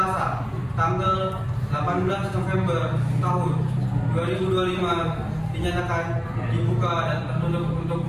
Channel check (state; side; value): identical; both; correlation 1.00